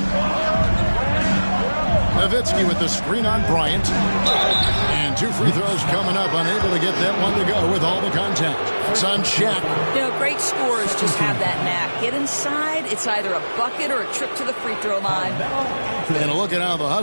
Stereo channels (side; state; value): both; inverted; correlation -1.00